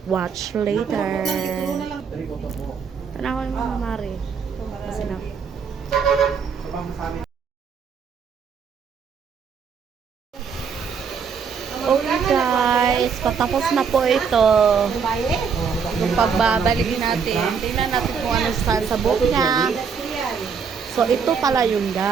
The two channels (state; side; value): quieter; left; 6.3 dB